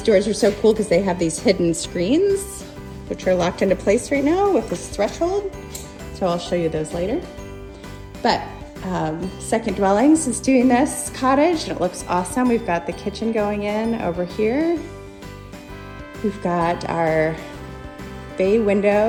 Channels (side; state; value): both; identical; correlation 1.00